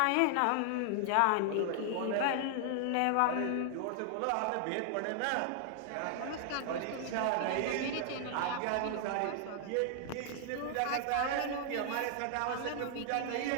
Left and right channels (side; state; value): both; different; correlation 0.00